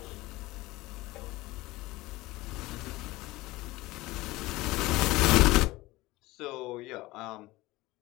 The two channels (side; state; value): right; quieter; 19.6 dB